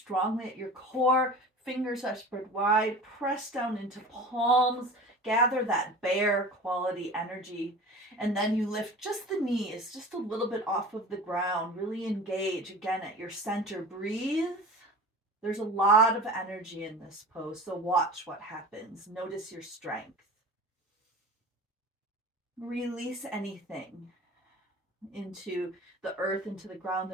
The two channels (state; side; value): normal; both; correlation 0.37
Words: at your core. Fingers are spread wide. Press down into palms. Gather that bear quality energy. And then you lift just the knees, just a little bit off of the ground. Really engage again at your center. Breathe. There's a lot of energy in this pose, so watch what happens. Notice your strength. Release anything into the earth, into the ground